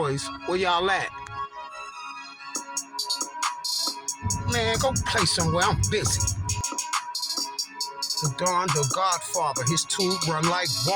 Where y'all at? Man, go play somewhere. I'm busy. The Don, the Godfather, his tube run like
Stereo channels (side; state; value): both; identical; correlation 1.00